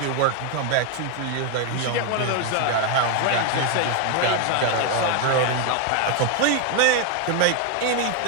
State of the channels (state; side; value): different; both; correlation 0.01